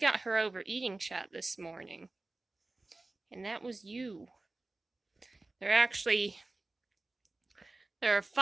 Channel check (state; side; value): quieter; left; 3.1 dB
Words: her overeating shot this morning. And that was you. There are